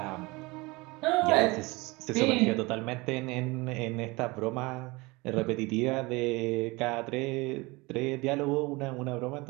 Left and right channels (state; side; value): quieter; left; 23.9 dB